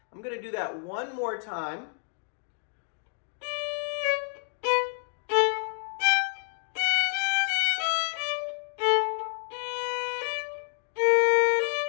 I'm going to do that one more time.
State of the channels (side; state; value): right; silent; 59 dB below the other